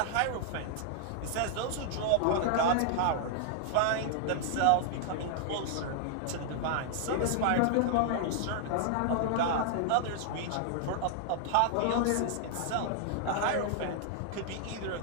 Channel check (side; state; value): both; different; correlation -0.01